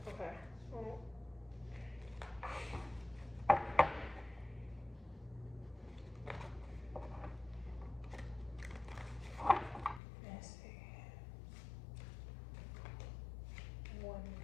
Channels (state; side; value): drops out; right; at 10.0 s